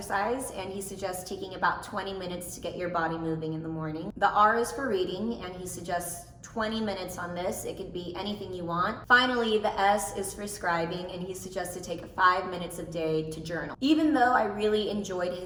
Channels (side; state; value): both; identical; correlation 1.00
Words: and he suggests taking about 20 minutes to get your body moving in the morning. The R is for reading, and he suggests 20 minutes on this. It could be anything you want. Finally, the S is for scribing, and he suggests to take 5 minutes a day to journal. Even though I really enjoyed